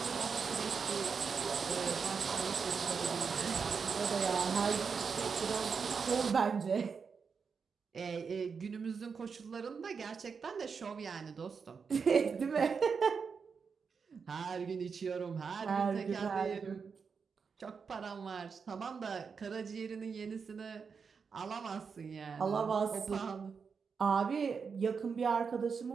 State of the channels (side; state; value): left; quieter; 5.7 dB